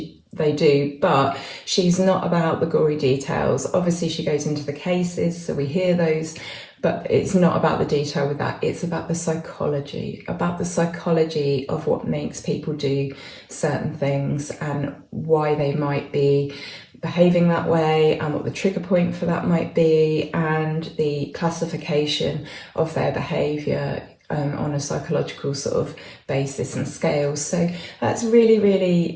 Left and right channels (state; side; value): identical; both; correlation 1.00